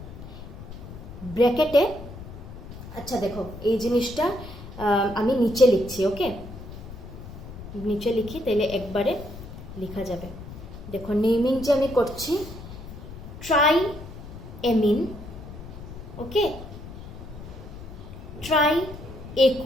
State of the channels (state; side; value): noise; left; rumble, 13 dB below the sound